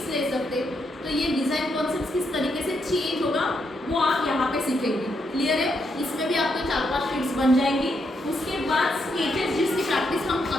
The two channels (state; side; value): normal; both; correlation 0.79